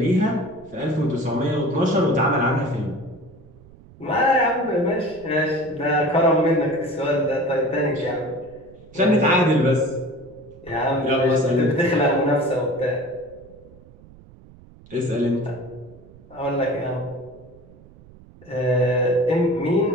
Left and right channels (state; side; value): noise; right; rumble, 23 dB below the sound